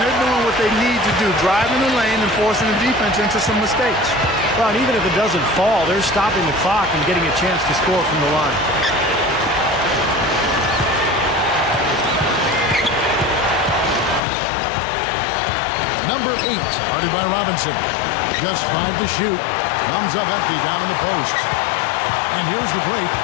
they're doing what they need to do, driving the lane and forcing the defense into some mistakes. Well, and even if it doesn't fall, they're stopping the clock and getting a chance to score from the line. Number 8, guarded by Robinson. Just 5 to shoot. Comes up empty down in the post. And here's the break.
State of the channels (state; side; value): drops out; right; at 14.2 s